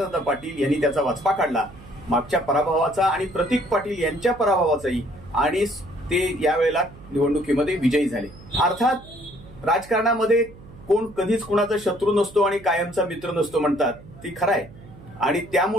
पाटील यांनी त्याचा वचपा काढला मागच्या पराभवाचा आणि प्रतीक पाटील यांच्या पराभवाचाही, आणि ते यावेळेला निवडणुकीमध्ये विजयी झाले. अर्थात राजकारणामध्ये कोण कधीच कुणाचा शत्रू नसतो आणि कायमचा मित्र नसतो म्हणतात, ती खरं आहे. आणि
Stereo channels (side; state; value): right; noise; hum, 20 dB below the sound